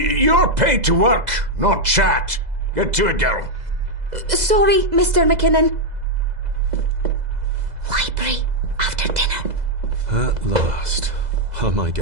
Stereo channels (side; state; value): left; late; 2.0 ms